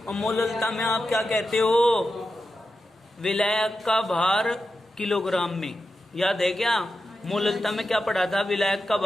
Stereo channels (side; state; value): both; normal; correlation 0.90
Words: और मोललता में आप क्या कहते हो? विलायक का भार किलोग्राम में। याद है क्या? मोललता में क्या पढ़ा था? विलायक का